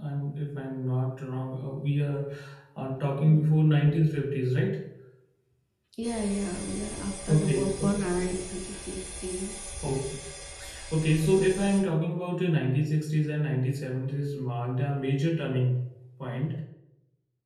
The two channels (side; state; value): both; identical; correlation 1.00